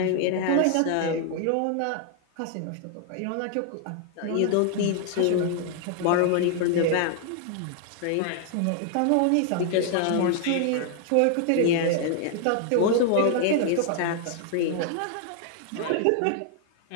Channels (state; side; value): different; both; correlation 0.00